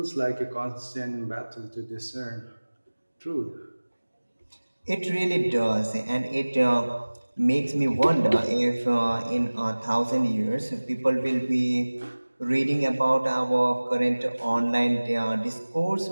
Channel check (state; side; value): inverted; both; correlation -1.00